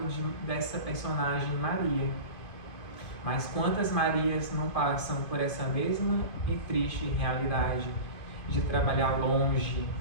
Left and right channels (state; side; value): late; right; 2.5 ms